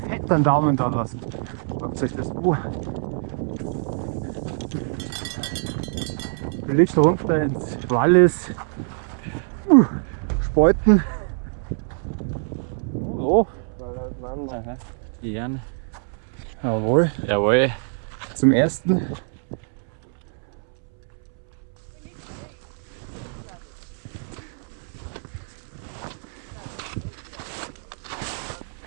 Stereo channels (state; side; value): silent; left; 62 dB below the other